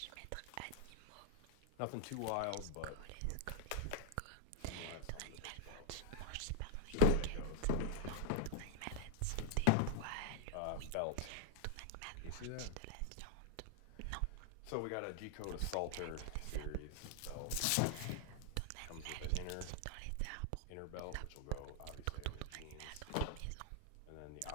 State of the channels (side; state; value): both; different; correlation 0.00